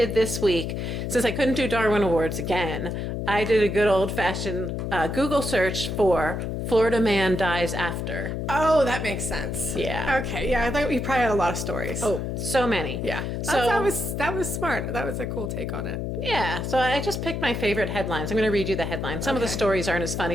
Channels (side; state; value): left; noise; hum, 3 dB below the sound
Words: this week, since I couldn't do Darwin Awards again, I did a good old-fashioned Google search for Florida man dies after. Oh, that makes sense. Yeah. Okay. Yeah, I thought you probably had a lot of stories. Oh, so many. Yeah. So That was smart. That was a cool take on it. yeah, so I just picked my favorite headlines. I'm going to read you the headlines. Some of the Okay. stories aren't as